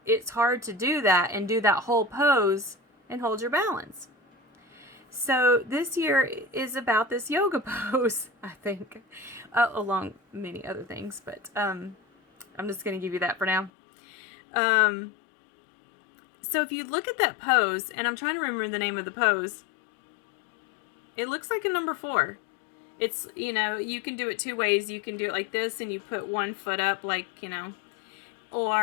it's hard to do that and do that whole pose and hold your balance. So this year is about this yoga pose, I think, along many other things, but I'm just going to give you that for now. So if you look at that pose, and I'm trying to remember the name of the pose, it looks like a number 4. It's, you know, you can do it 2 ways. You can do it like this, and you put one foot up, like, you know,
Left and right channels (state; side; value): drops out; right; at 13.7 s